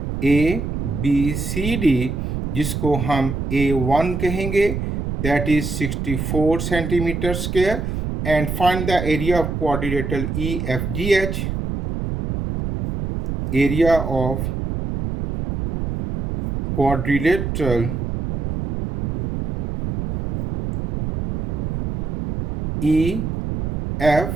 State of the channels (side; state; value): right; noise; rumble, 3 dB below the sound